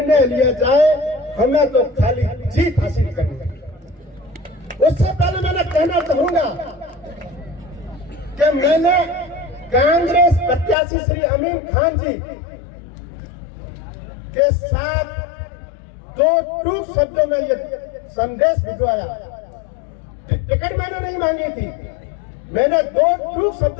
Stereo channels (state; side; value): drops out; right; at 10.8 s